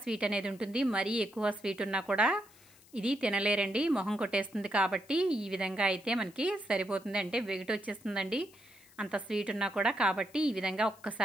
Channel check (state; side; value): noise; left; hiss, 26 dB below the sound